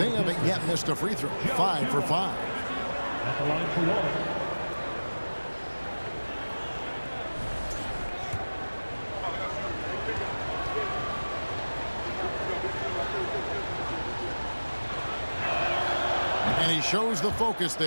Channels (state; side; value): inverted; both; correlation -1.00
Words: haven't yet missed a free throw. 5 for 5. At the line for one. And he shows the focus